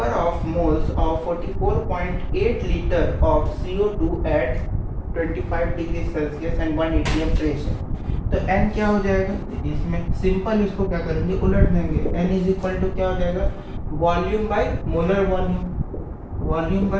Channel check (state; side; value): identical; both; correlation 1.00